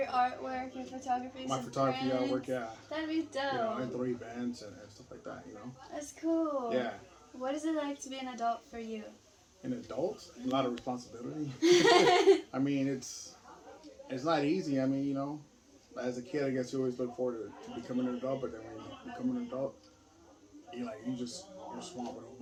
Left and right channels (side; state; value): both; identical; correlation 1.00